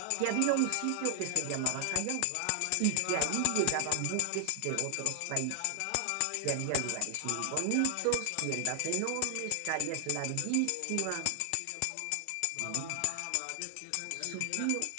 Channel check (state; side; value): different; both; correlation 0.00